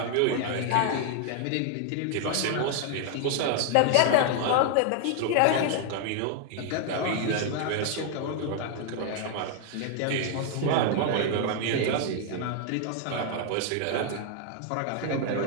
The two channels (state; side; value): different; both; correlation 0.00